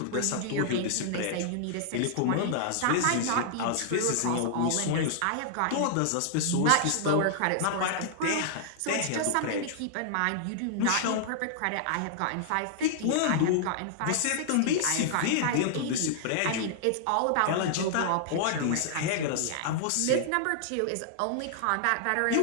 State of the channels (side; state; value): both; different; correlation -0.01